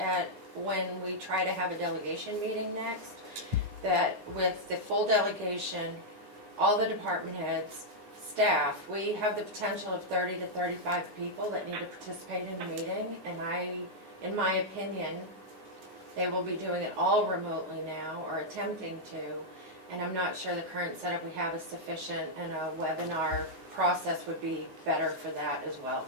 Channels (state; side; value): late; left; 9.7 ms